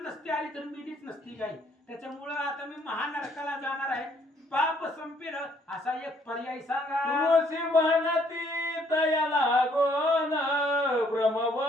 नसती आली तर मिलीच नसती गाय. त्याच्यामुळं आता मी महानरकाला जाणार आहे, पाप संपेल असा एक पर्याय सांगा. ऋषी म्हणती तया लागोन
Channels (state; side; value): normal; both; correlation 0.65